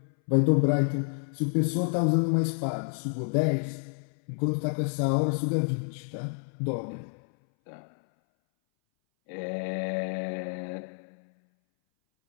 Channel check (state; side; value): silent; right; 59 dB below the other